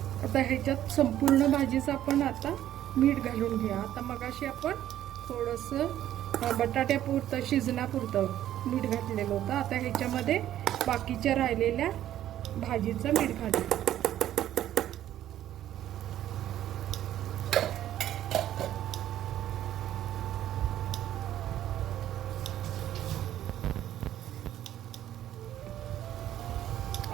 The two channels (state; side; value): quieter; left; 12.2 dB